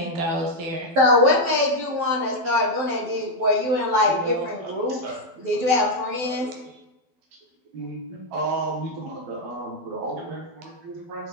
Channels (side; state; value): left; late; 12 ms